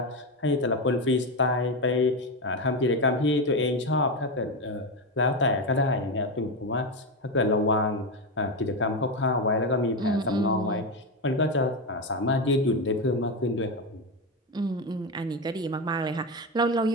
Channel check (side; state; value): both; normal; correlation 0.13